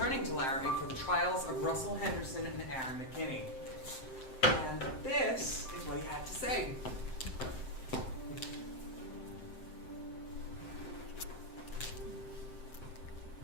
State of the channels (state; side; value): late; right; 7.7 ms